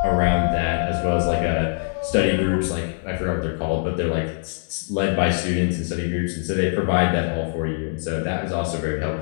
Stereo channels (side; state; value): right; silent; digital silence